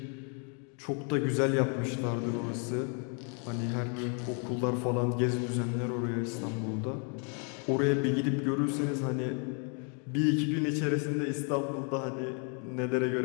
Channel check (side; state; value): right; quieter; 39.7 dB